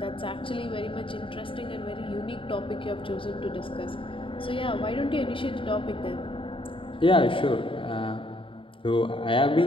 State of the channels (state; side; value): late; right; 0.25 ms